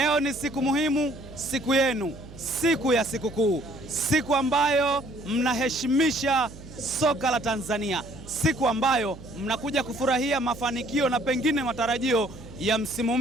ni siku muhimu, siku yenu, siku ya sikukuu, siku ambayo mnaheshimisha soka la Tanzania, siku ambayo mnakuja kufurahia mafanikio na pengine matarajio ya msimu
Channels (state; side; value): noise; right; hum, 16 dB below the sound